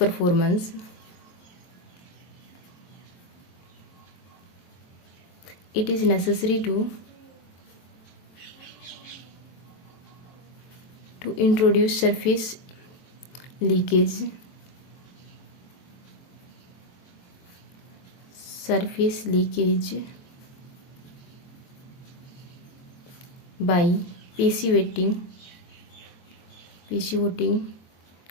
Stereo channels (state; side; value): late; right; 23 ms